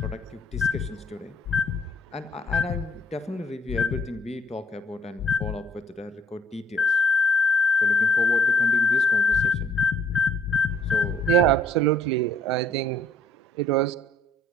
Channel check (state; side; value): normal; both; correlation 0.64